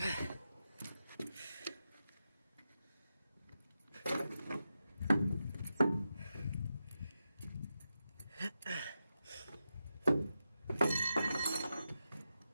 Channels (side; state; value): both; inverted; correlation -0.89